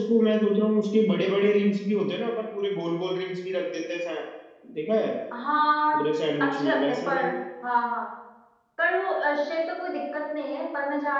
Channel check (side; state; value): both; identical; correlation 1.00